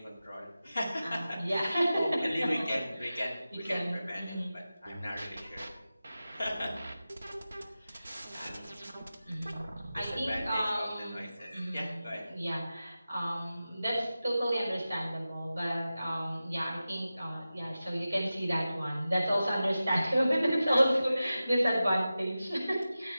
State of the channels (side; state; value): both; inverted; correlation -0.94